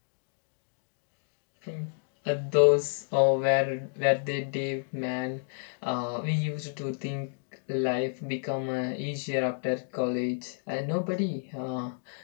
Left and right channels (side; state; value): right; silent; digital silence